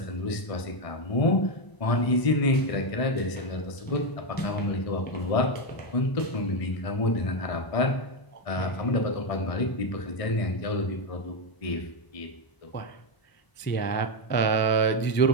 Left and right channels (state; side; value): late; right; 1.0 ms